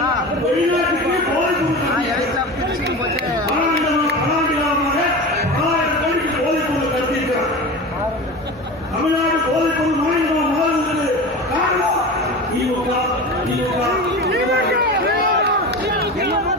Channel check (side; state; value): both; normal; correlation 0.29